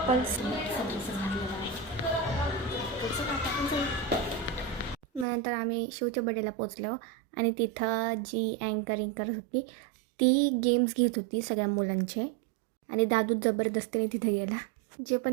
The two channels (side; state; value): left; drops out; at 5.2 s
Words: सगळं घातलेलं आहे. त्याचं आता आपण जाऊ. नंतर आम्ही शिवच्या बड्डेला पोचलो आणि तिथं जी अँकरिंग करत होती ती गेम्स घेत होती सगळ्या मुलांचे. आणि दादू जबरदस्तीने तिथे गेला. जे